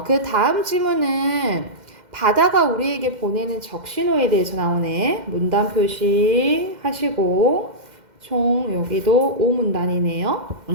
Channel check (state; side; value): late; left; 2.1 ms